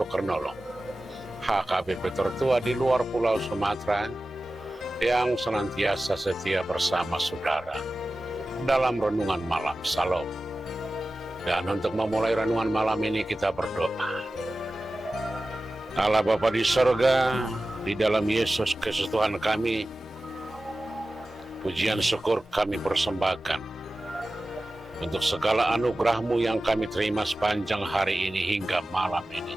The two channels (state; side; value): normal; both; correlation 0.95